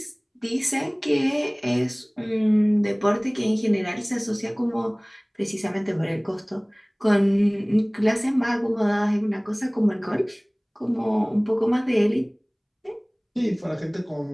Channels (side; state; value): both; identical; correlation 1.00